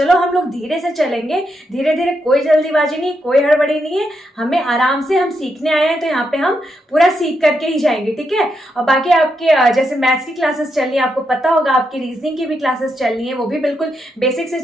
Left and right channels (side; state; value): both; normal; correlation 0.82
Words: हम लोग धीरे से चलेंगे, धीरे धीरे, कोई जल्दीबाजी नहीं, कोई हड़बड़ी नहीं है, हमें आराम से, हम सीखने आए हैं तो यहाँ पे हम पूरा सीख करके ही जाएंगे। ठीक है, और बाकी आपके जैसे मैथ्स की क्लासेस चल रही है, आपको पता होगा आपकी रीजनिंग की भी क्लासेस चल रही है, वो भी बिल्कुल बेसिक से